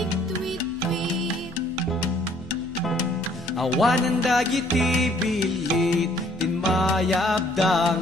Awanan dagiti bilit, tinmayabda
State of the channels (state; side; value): normal; both; correlation 0.61